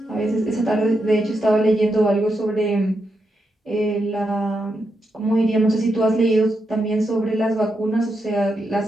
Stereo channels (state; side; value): normal; both; correlation 0.84